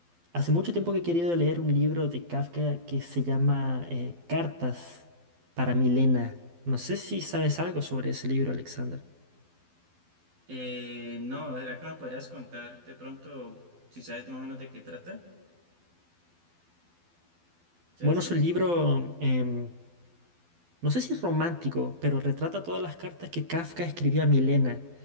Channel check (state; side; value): late; left; 12 ms